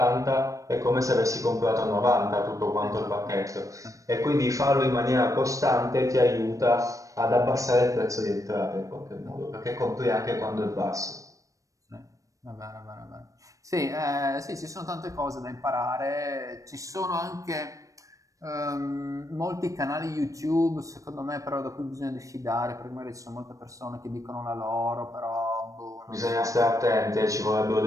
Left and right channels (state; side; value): late; left; 0.16 ms